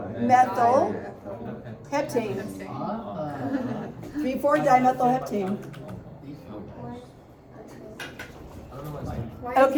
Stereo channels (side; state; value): both; identical; correlation 1.00